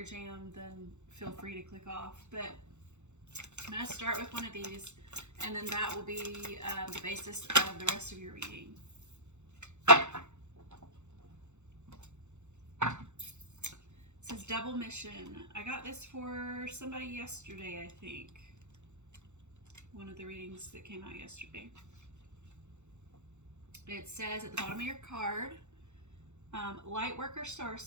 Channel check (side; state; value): left; late; 0.83 ms